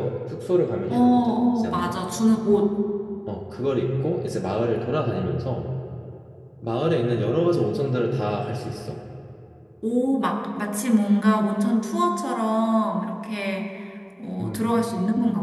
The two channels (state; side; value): identical; both; correlation 1.00